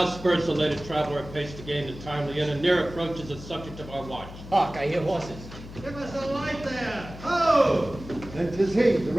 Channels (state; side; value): noise; left; hum, 14 dB below the sound